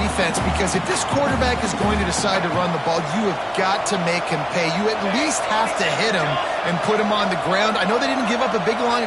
because if this quarterback is going to decide to run the ball, you have got to make him pay. You at least have to hit him and put him on the ground. I know they didn't give up a big, long,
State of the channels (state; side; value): identical; both; correlation 1.00